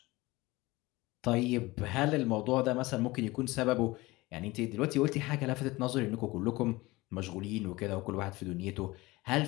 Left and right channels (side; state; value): right; quieter; 20.9 dB